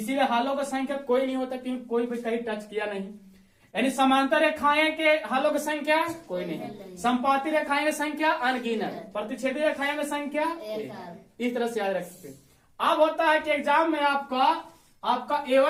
हालों की संख्या कोई नहीं होता, क्योंकि कोई भी कहीं टच किया नहीं। यानी समांतर रेखाएं के हालों की संख्या कोई नहीं, संपाती रेखाएं की संख्या अनगिनत, प्रतिच्छेदी रेखाएं की संख्या इस तरह से याद रख सकते। अब होता है कि एग्जाम में आपका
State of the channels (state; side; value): identical; both; correlation 1.00